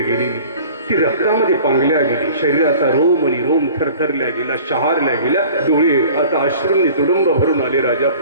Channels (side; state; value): both; inverted; correlation -0.46